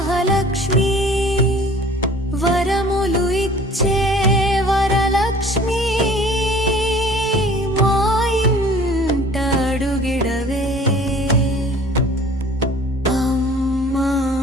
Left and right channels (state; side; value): normal; both; correlation 0.49